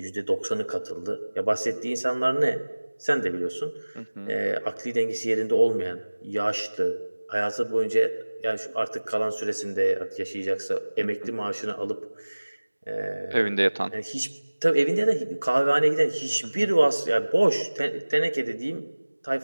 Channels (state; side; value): inverted; both; correlation -1.00